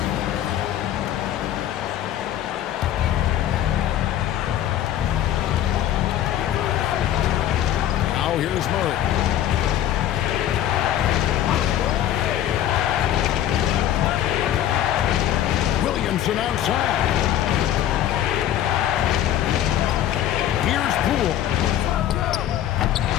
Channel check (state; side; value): quieter; right; 11.7 dB